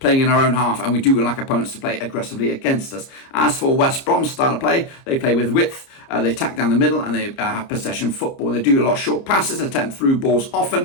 in our own half, and we do like opponents to play aggressively against us. As for West Brom's style of play, they play with width, they attack down the middle, and they have possession football. They do a lot of short passes, attempt through balls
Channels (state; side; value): late; right; 30 ms